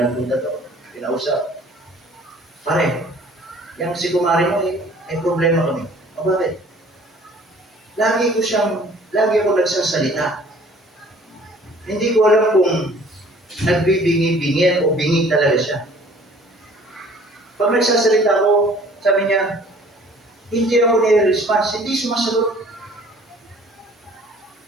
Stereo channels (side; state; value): both; normal; correlation 0.53